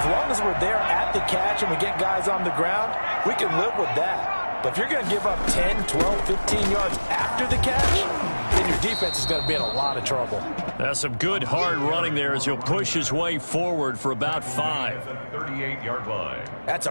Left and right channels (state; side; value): inverted; both; correlation -1.00